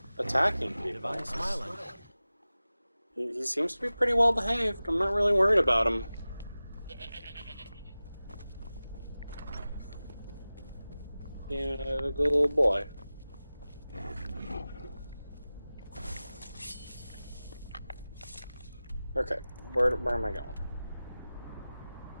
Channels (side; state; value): both; inverted; correlation -0.96